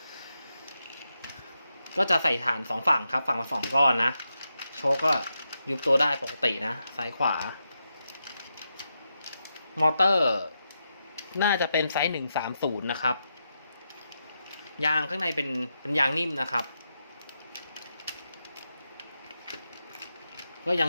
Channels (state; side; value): inverted; both; correlation -0.86